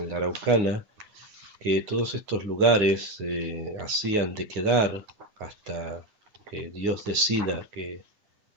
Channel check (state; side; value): late; left; 9.6 ms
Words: la Araucana, que todos estos lugares hacían de quedar hasta que Dios decida que